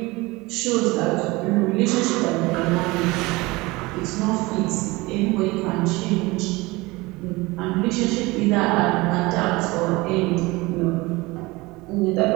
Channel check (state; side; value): quieter; left; 22.5 dB